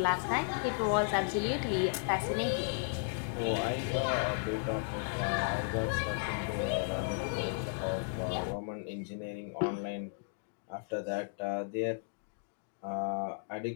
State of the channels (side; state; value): right; silent; digital silence